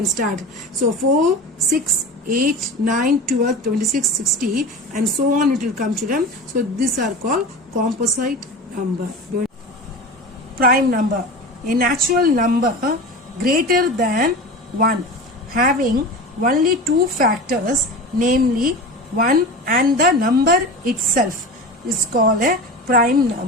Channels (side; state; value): both; normal; correlation 0.31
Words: start. So 4, 6, 8, 9, 12, 26, 60 and so on it will come, children. So these are called composite number. Prime number. A natural number greater than 1 having only 2 factors, namely 1 and the number itself, is called a prime